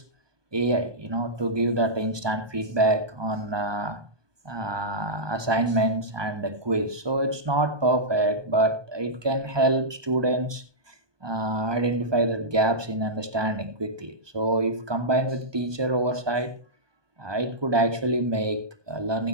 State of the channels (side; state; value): left; late; 1.2 ms